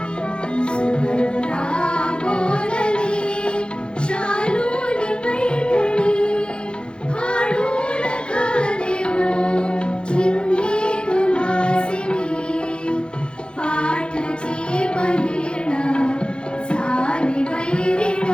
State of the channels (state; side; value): late; right; 0.053 ms